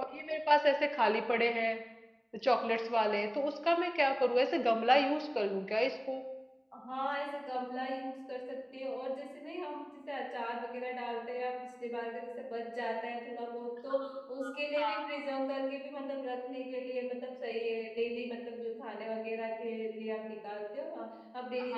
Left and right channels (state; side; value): identical; both; correlation 1.00